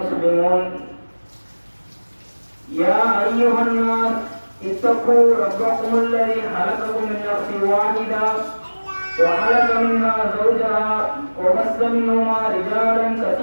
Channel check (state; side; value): inverted; both; correlation -1.00